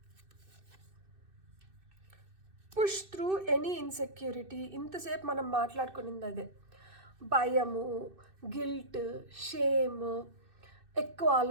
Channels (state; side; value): late; left; 2.6 ms